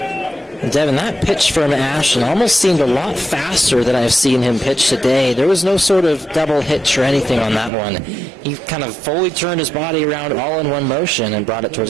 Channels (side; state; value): left; drops out; at 7.7 s